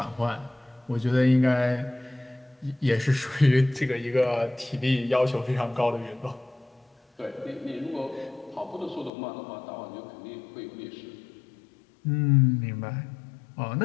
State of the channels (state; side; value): drops out; right; at 9.1 s